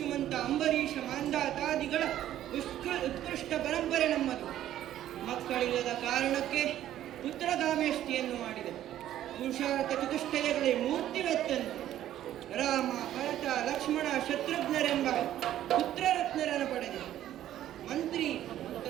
ಅಂಬರೀಷ, ಮಾಂಧಾತಾದಿಗಳ ಉತ್ಕೃಷ್ಟ ಪರಂಪರೆ ನಮ್ಮದು. ಮಕ್ಕಳಿಲ್ಲದ ಕಾರಣಕ್ಕೆ ಪುತ್ರಗಾಮೇಷ್ಟಿಯನ್ನು ಮಾಡಿದೆ. ಪುರುಷಾರ್ಥ ಚತುಷ್ಟಯಗಳೇ ಮೂರ್ತಿವೆತ್ತಂತೆ. ರಾಮ, ಭರತ, ಲಕ್ಷ್ಮಣ, ಶತ್ರುಘ್ನರೆಂಬ ಪುತ್ರರತ್ನರನ್ನು ಪಡೆದೆ. ಮಂತ್ರಿ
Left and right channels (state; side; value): quieter; left; 12.3 dB